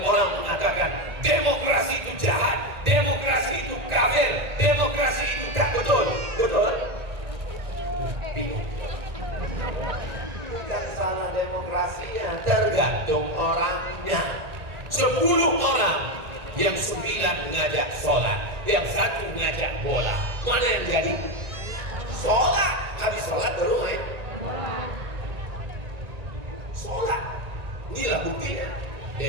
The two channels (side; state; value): left; late; 1.8 ms